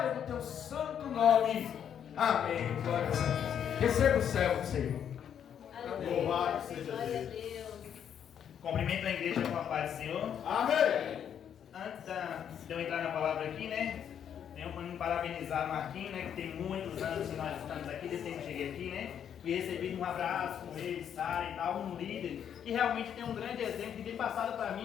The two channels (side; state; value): right; quieter; 8.8 dB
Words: do teu santo nome. Amém. Glória a Deus. Receba o céu, Senhor. Louvado seja Deus. Cumprimento a igreja com a paz do Senhor. Amém. Antes de eu entrar na palavra aqui, né? Tenho para me parabenizar o Marquinhos, né? Que tem muitos anos que nós estamos aqui, desde que eu cheguei aqui, né? E recebi um abraço com ele, Sara e tal, um líder que realmente tem um grande exemplo que tem passado para